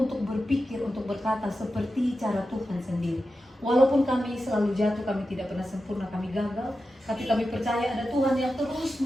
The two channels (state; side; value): normal; both; correlation 0.91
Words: berpikir, untuk berkata seperti cara Tuhan sendiri. Walaupun kami selalu jatuh, kami tidak pernah sempurna, kami gagal, tapi kami percaya ada Tuhan yang terus